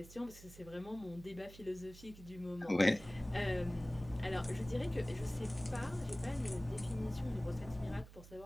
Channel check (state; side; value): noise; right; hum, 17 dB below the sound